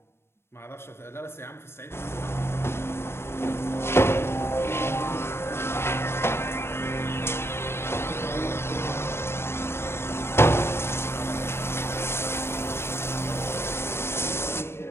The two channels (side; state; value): right; late; 0.12 ms